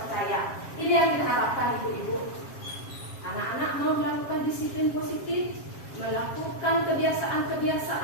Ini yang kita harapkan ibu-ibu. Anak-anak mau melakukan disiplin positif, melakukan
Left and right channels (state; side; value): late; right; 7.4 ms